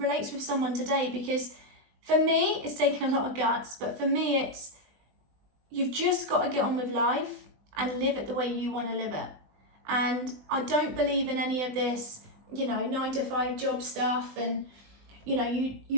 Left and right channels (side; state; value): left; late; 20 ms